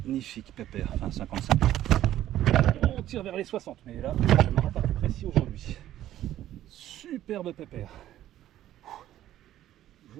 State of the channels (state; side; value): quieter; left; 12.9 dB